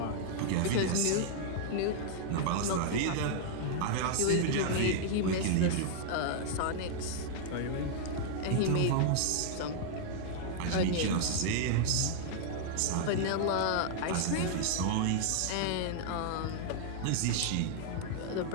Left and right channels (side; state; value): both; different; correlation -0.01